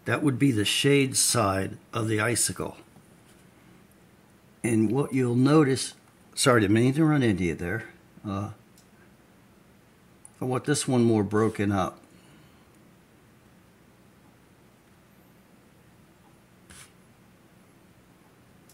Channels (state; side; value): identical; both; correlation 1.00